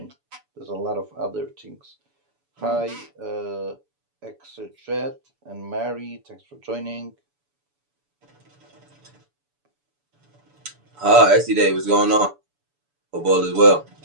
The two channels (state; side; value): late; left; 7.0 ms